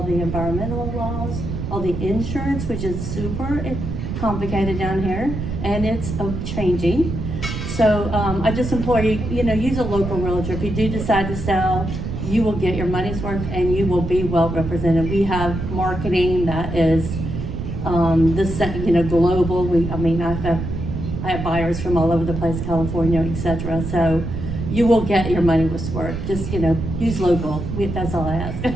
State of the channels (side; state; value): right; noise; rumble, 5 dB below the sound